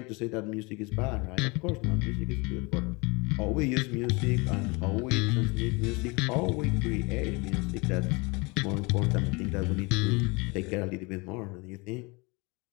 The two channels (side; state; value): right; quieter; 27.3 dB